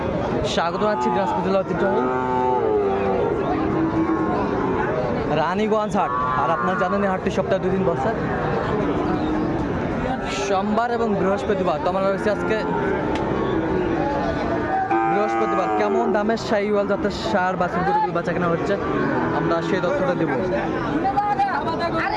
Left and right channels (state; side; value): identical; both; correlation 1.00